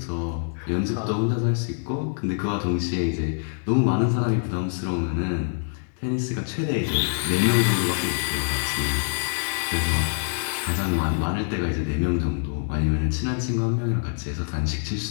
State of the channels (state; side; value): silent; right; digital silence